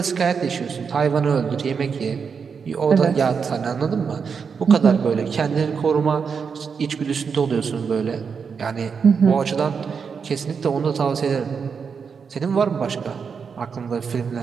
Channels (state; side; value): quieter; left; 6.0 dB